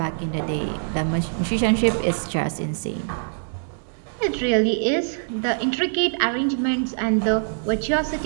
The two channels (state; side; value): silent; left; digital silence